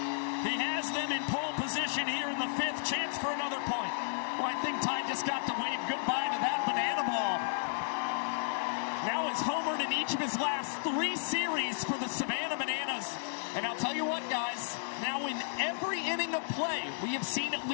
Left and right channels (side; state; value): right; silent; 56 dB below the other